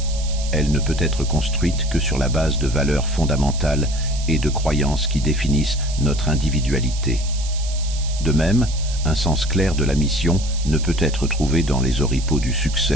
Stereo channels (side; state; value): right; noise; hiss, 12 dB below the sound